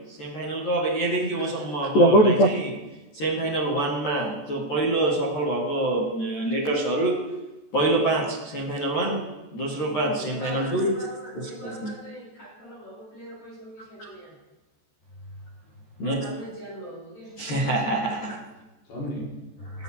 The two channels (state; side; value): late; right; 14 ms